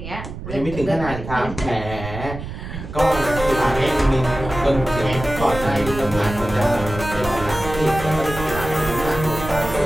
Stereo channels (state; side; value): noise; right; rumble, 9 dB below the sound